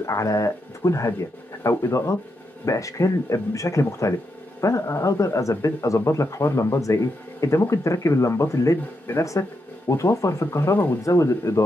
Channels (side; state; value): both; normal; correlation 0.83